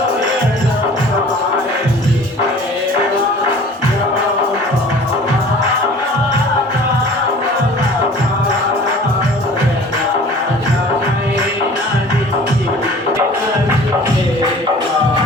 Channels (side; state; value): both; normal; correlation 0.46